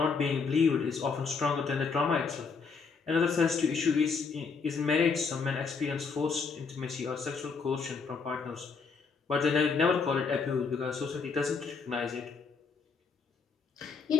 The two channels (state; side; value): quieter; right; 5.1 dB